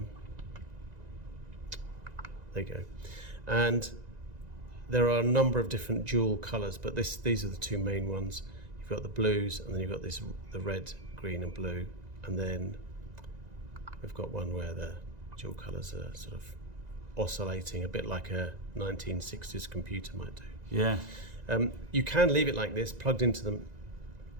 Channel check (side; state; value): left; late; 1.9 ms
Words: you go. And there are a number of different jewel colours, but these are the two main ones. You've got the blues, and then you've got the red, green and blue, and then we've got one where the dual colours are sort of oscillating, a bit like a 1960s computer might do. Yeah. You can leave it like this, plugged into